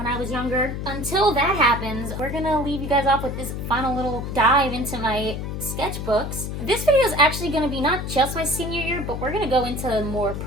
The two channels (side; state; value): left; noise; hum, 5 dB below the sound